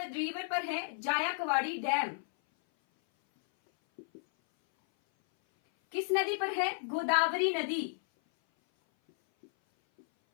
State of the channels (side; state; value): right; silent; 56 dB below the other